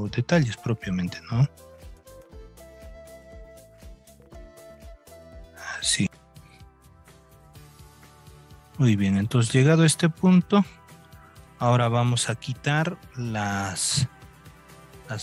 detalles propiamente, ¿no? Así. Muy bien, entonces llegado a este punto, ahora vamos a quitar las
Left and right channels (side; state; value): both; identical; correlation 1.00